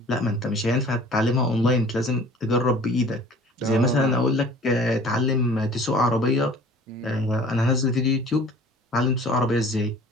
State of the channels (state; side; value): normal; both; correlation 0.48